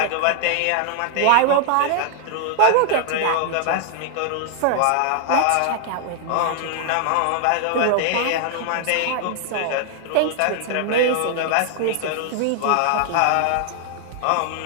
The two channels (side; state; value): both; different; correlation 0.00